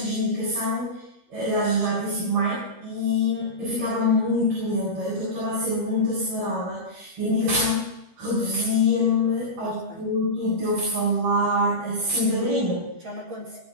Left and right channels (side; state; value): left; late; 13 ms